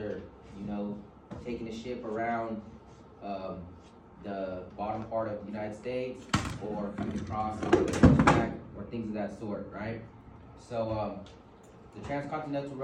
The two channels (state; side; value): identical; both; correlation 1.00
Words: taking a ship around the bottom part of the United States, or across the track, or things of that sort, right? So the Transcontinental